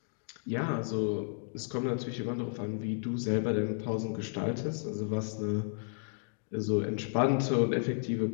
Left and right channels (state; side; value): silent; right; digital silence